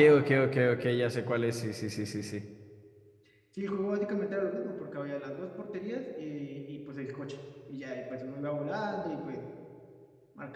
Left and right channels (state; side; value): identical; both; correlation 1.00